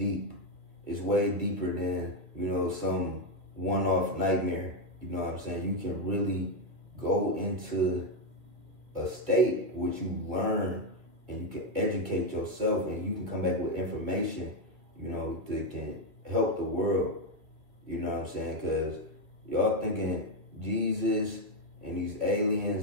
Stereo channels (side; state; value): left; late; 2.4 ms